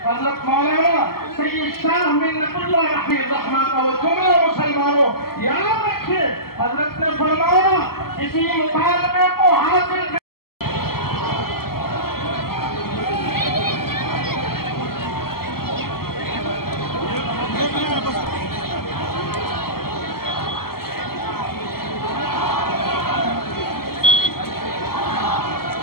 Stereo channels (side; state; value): right; late; 0.95 ms